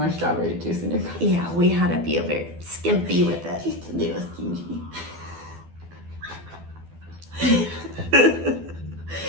strawberry juice in your cup. Yeah, we had to be a very skimpy with it. Just a little stingy.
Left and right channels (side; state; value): left; late; 12 ms